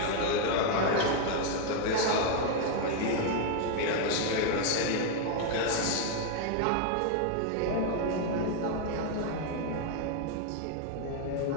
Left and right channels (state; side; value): different; both; correlation 0.01